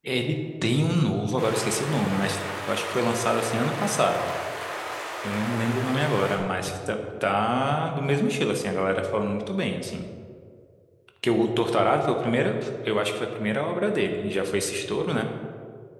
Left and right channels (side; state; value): both; identical; correlation 1.00